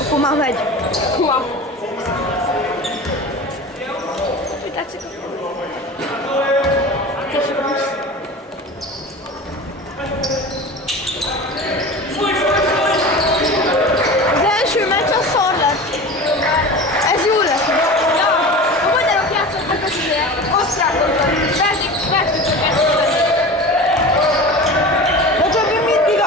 Hú, már megy. Húha. Mit tetszik? Az első meccs az szar lett. Ez jó lett. Ja, a magyarok játszottak az ilyen osztrákokkal. Vertük őket. De többi mindig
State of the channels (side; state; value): both; normal; correlation 0.33